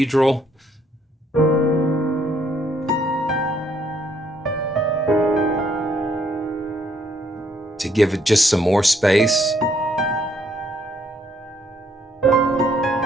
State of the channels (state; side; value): normal; both; correlation 0.68